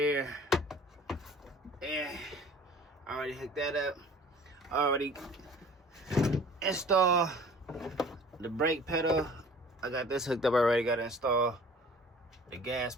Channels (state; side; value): normal; both; correlation 0.48